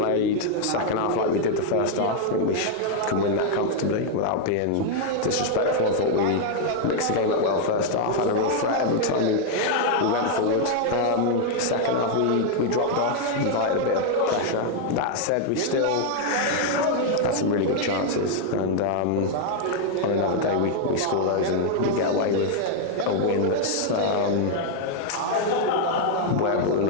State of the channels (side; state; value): both; different; correlation 0.00